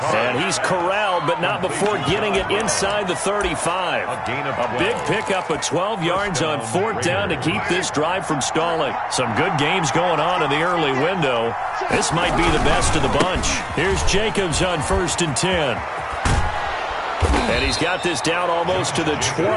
And he's corralled, but not before getting it inside the 35. A big pickup of 12 yards on 4th down to keep this drive from stalling. Some good games going on in the early window. This might be the best of the bunch. Here's Jacobs on 1st and 10. And he's got this down almost to the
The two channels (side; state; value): both; identical; correlation 1.00